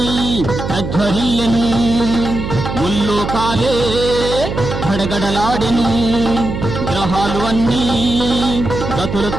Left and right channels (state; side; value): noise; right; hum, 5 dB below the sound